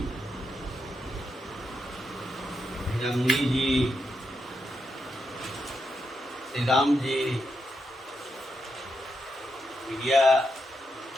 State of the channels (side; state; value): both; normal; correlation 0.84